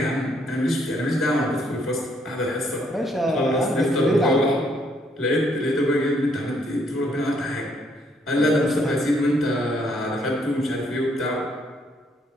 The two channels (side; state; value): both; normal; correlation 0.70